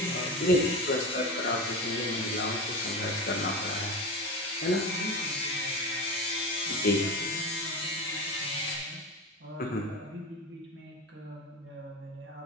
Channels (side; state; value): both; normal; correlation 0.25